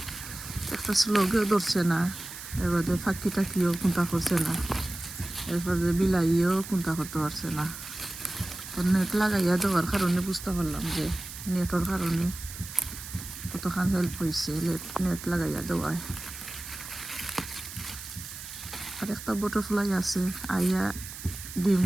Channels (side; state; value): right; noise; hiss, 11 dB below the sound